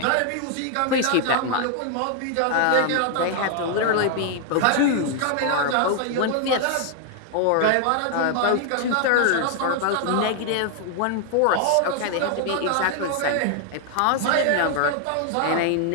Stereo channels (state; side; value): different; both; correlation 0.00